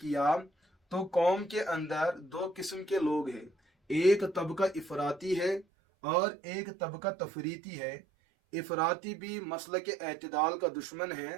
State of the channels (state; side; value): drops out; left; at 5.7 s